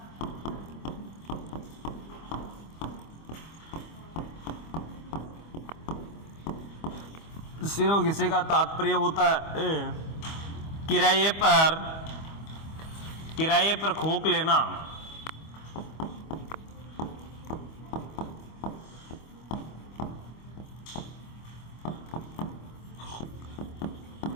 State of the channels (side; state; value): right; late; 25 ms